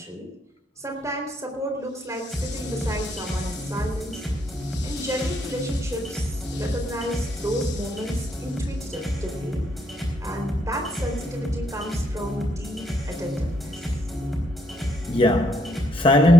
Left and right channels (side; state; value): both; normal; correlation 0.74